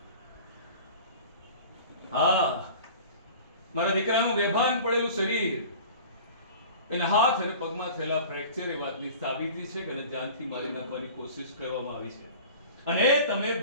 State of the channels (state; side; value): inverted; both; correlation -0.41